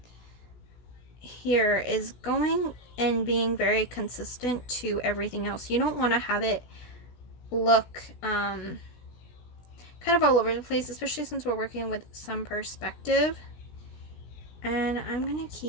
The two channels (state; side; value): late; right; 16 ms